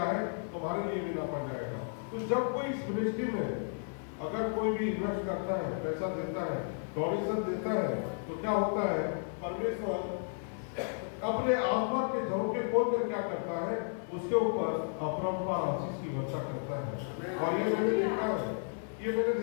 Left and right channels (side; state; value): right; silent; digital silence